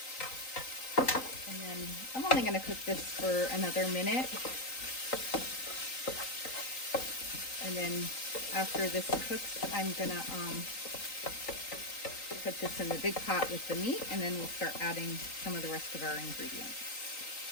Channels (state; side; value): late; right; 3.9 ms